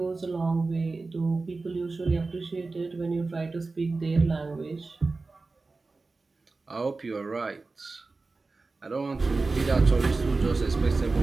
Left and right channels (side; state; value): left; quieter; 3.7 dB